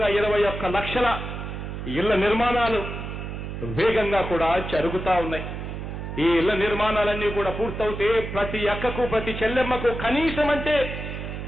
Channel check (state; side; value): noise; right; hum, 7 dB below the sound